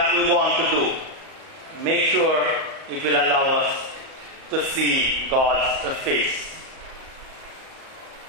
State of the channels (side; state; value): left; late; 38 ms